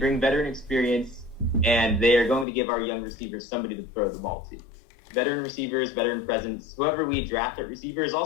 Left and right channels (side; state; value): right; drops out; at 2.5 s